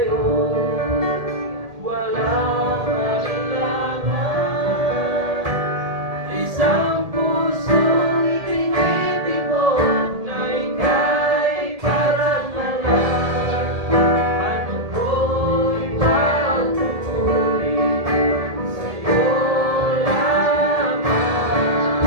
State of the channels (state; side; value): late; left; 1.8 ms